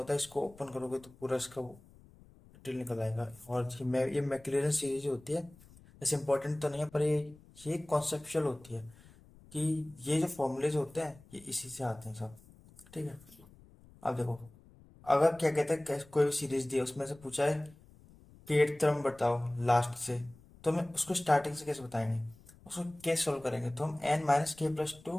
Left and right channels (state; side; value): noise; left; rumble, 24 dB below the sound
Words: है, इसको ओपन करोगे तो पूरा इसका डिटेल निकल आएगा। और ये मैक्लॉरिन सीरीज होती है। ऐसे इंपॉर्टेंट तो नहीं है, पर ये कॉन्सेप्चुअल होती है कि ये जो फॉर्मूलेज होते हैं ये इसी से आते हैं सब। ठीक है, अब देखो, अगर क्या कहते हैं, कोई भी सीरीज दी है, उसमें से पूछा है कि 8th टर्म बताओ लास्ट से, तो हमें उसको स्टार्टिंग से कैसे बताएंगे, उसको कैसे सॉल्व करेंगे। तो हम